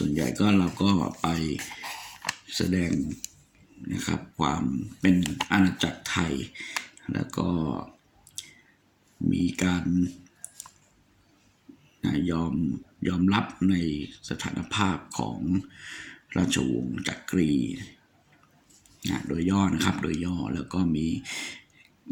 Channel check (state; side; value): identical; both; correlation 1.00